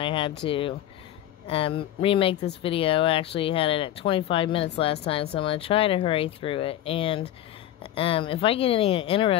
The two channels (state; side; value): quieter; right; 12.4 dB